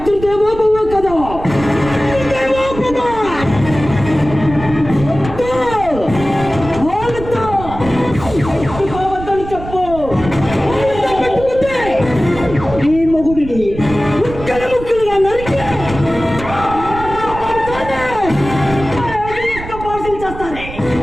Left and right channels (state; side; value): noise; right; rumble, 11 dB below the sound